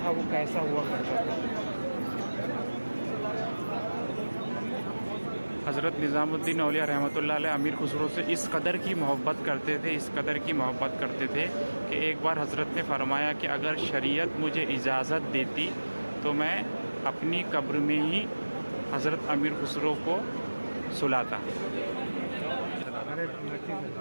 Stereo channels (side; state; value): both; inverted; correlation -1.00